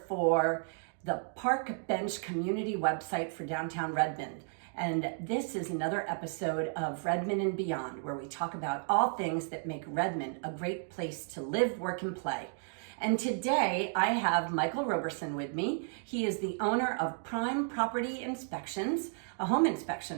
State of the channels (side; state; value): left; silent; 56 dB below the other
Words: for the Park Bench community website for downtown Redmond. And this is another episode of Redmond and Beyond, where we talk about all things that make Redmond a great place to live, work, and play. And today I have Michael Roberson with me. He is the owner of Prime Property Inspections, a home